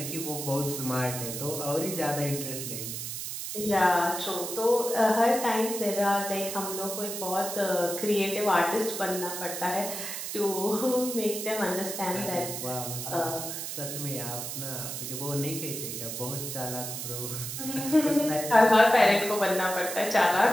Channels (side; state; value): right; noise; hiss, 6 dB below the sound